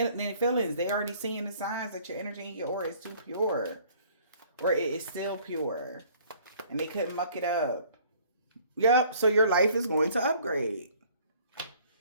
their feelings. They already seeing the signs that your energy and your aura is too pure. Or it is still pure. And they couldn't muck it up. Yep. So your life is going to upgrade.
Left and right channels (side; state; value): both; inverted; correlation -0.56